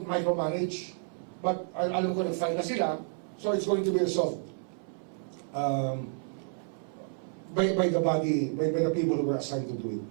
micromanage, but alam ko nag-file na sila, so it's going to be resolved by the body, by the people who were assigned to do it.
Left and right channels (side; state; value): left; silent; 58 dB below the other